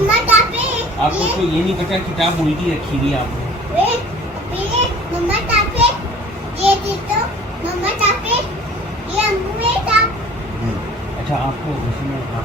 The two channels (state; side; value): normal; both; correlation 0.48